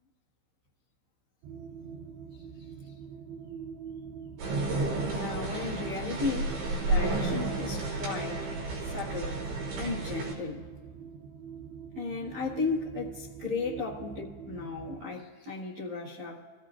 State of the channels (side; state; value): left; late; 15 ms